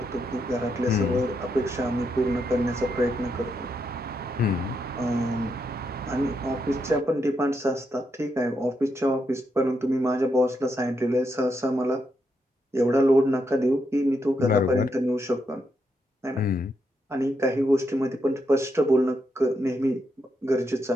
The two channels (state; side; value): normal; both; correlation 0.81